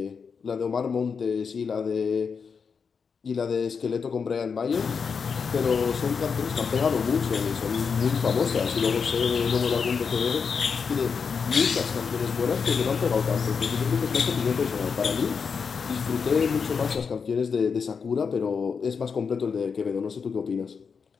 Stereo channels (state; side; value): quieter; right; 5.8 dB